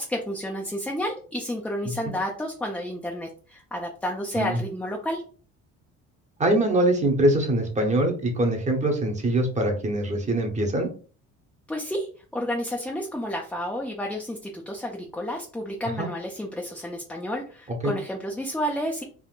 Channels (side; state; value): both; normal; correlation 0.48